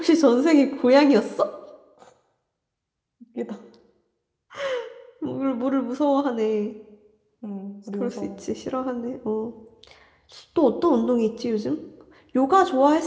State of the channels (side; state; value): both; identical; correlation 1.00